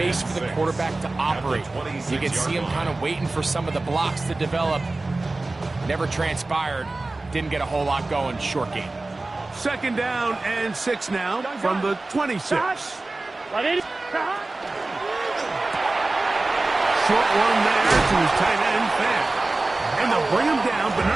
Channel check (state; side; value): quieter; left; 3.1 dB